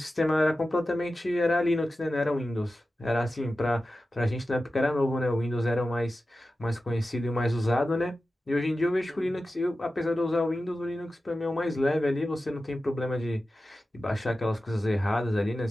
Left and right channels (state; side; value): normal; both; correlation 0.94